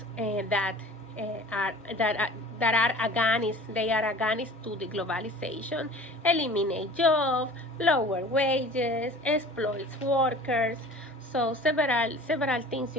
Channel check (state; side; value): normal; both; correlation 0.43